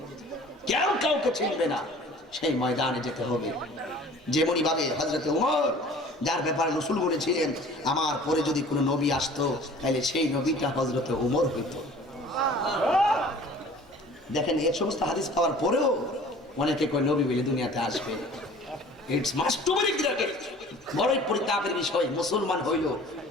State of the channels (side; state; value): both; normal; correlation 0.47